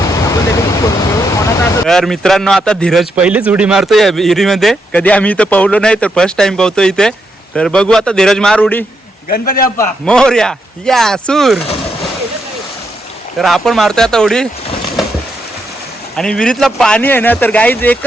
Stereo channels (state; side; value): normal; both; correlation 0.80